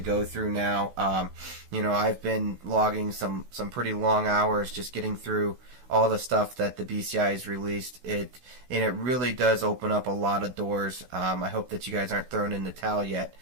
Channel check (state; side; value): late; left; 16 ms